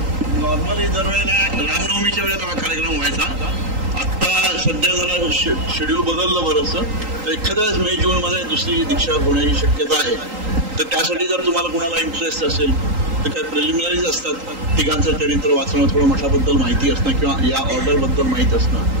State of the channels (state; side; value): late; left; 3.8 ms